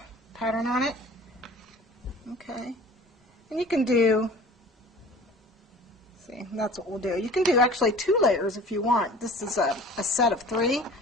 pattern on it. Okay, and you can do, see, that's what we'll do. You can do actually 2 layers if you want. This is a set of 3.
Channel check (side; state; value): both; normal; correlation 0.44